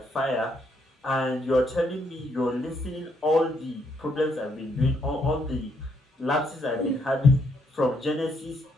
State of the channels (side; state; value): both; normal; correlation 0.73